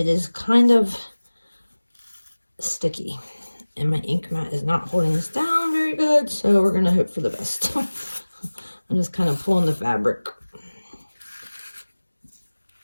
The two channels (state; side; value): inverted; both; correlation -1.00